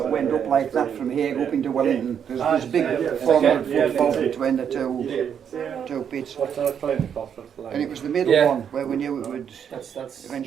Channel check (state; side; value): quieter; left; 8.1 dB